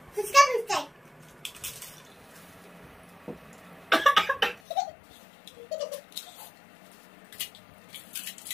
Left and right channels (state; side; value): drops out; right; at 4.6 s